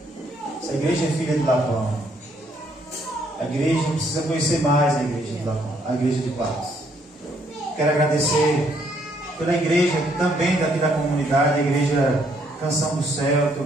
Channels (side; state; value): both; normal; correlation 0.69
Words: Essa igreja é filha de Lapão. A igreja precisa conhecer mais a Igreja de Lapão, a Igreja de Paz. Quero agradecer pela igreja também daqui da comunidade, a Igreja Canção do Céu. Estou